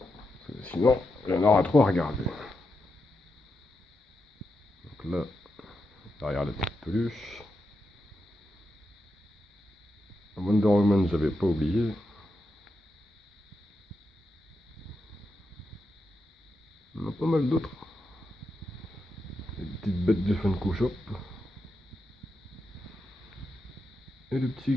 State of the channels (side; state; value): both; normal; correlation 0.86